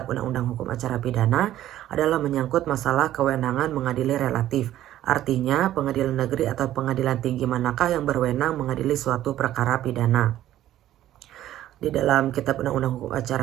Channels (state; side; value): quieter; left; 13.1 dB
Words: Undang-Undang Hukum Acara Pidana adalah menyangkut masalah kewenangan mengadili relatif. Artinya pengadilan negeri atau pengadilan tinggi manakah yang berwenang mengadili suatu perkara pidana. Di dalam Kitab Undang-Undang Hukum